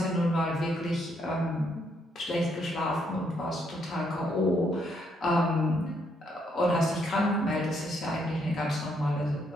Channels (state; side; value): normal; both; correlation 0.73